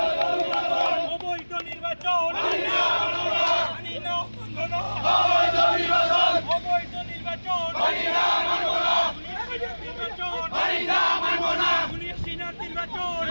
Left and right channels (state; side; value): inverted; both; correlation -1.00